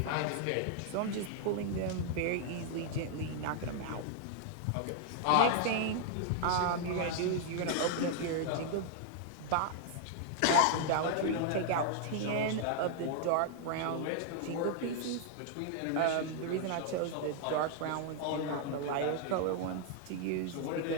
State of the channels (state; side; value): different; both; correlation 0.00